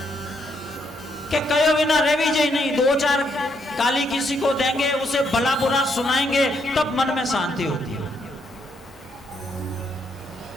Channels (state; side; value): normal; both; correlation 0.75